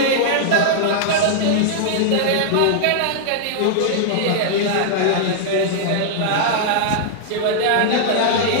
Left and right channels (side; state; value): both; different; correlation -0.01